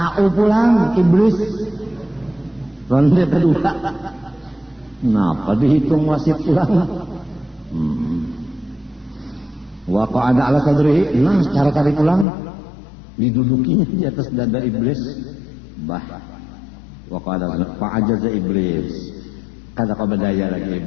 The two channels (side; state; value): right; drops out; at 12.2 s